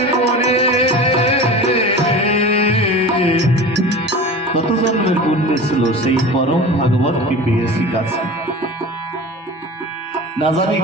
মনে। কত জন্মের পুণ্য ছিল সেই পরম ভাগবতকে পেয়েছি কাছে। না জানি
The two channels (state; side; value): normal; both; correlation 0.34